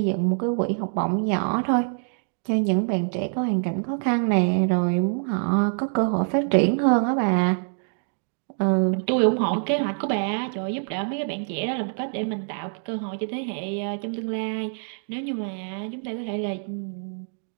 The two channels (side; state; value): left; silent; digital silence